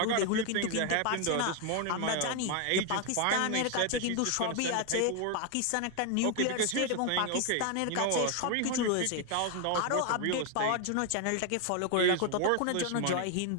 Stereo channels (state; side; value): different; both; correlation 0.01